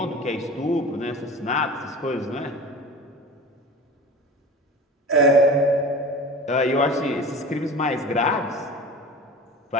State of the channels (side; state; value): both; normal; correlation 0.35